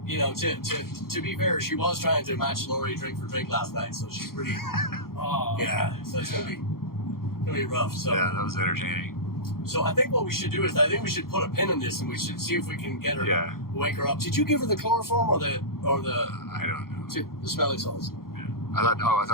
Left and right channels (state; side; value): late; right; 0.93 ms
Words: you know, to be fair, she was trying to match Lori drink for drink last night, so she's pretty. So it's gonna be rough. So yeah, that was entertaining. So I think what we should do is we should put a pin in this, and we should see if we can get her, wake her up. Did you give her the chloroform or the I don't know. The smelling salts? Yeah. I